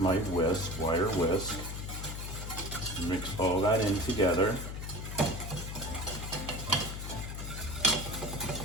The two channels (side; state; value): left; noise; hum, 6 dB below the sound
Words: wire whisk. Mix all that in together.